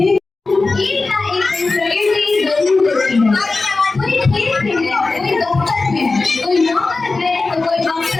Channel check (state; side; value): quieter; right; 3.7 dB